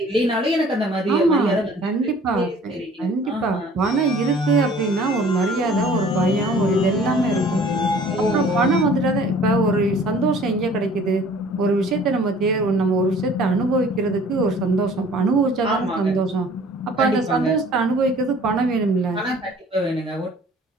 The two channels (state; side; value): normal; both; correlation 0.51